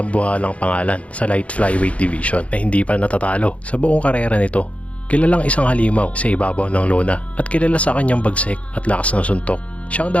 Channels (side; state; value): right; late; 0.064 ms